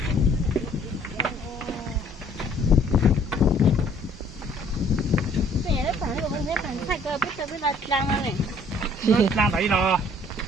Lan đẩy rồi.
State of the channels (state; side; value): normal; both; correlation 0.59